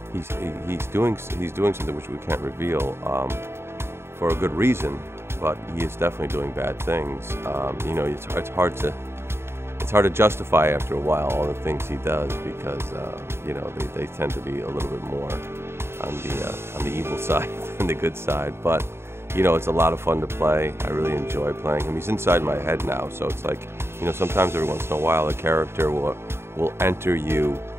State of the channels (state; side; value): late; left; 0.12 ms